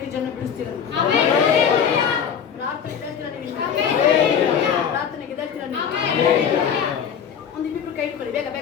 ಜನ ಬಿಡಿಸ್ತೀರ ಪ್ರಾರ್ಥನೆಗೆ ಎದ್ದೇಳ್ತೀರ ನೀವು ಒಂದು ಇಬ್ಬಿಬ್ರು ಕೈ ಇಟ್ಕೊಳ್ಳಿ ಬೇಗ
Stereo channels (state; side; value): quieter; right; 7.7 dB